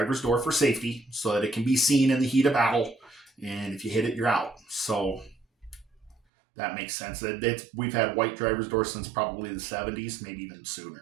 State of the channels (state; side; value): drops out; left; at 6.2 s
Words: door for safety so that it can be seen in the heat of battle. And if you hit it, you're out. So that makes sense. We've had white driver's doors since probably the 70s, maybe even